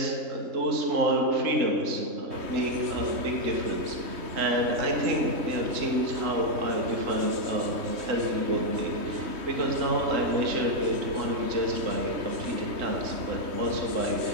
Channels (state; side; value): late; left; 3.2 ms